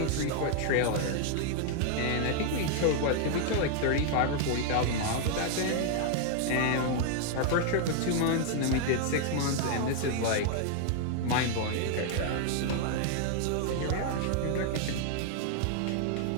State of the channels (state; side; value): different; both; correlation 0.00